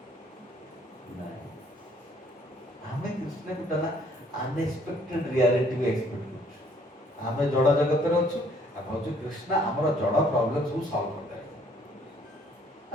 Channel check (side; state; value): both; normal; correlation 0.62